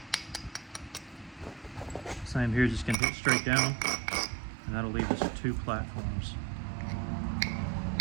Same here, just gonna hit straight down, and that'll leave us 2 platforms,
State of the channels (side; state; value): left; drops out; at 3.0 s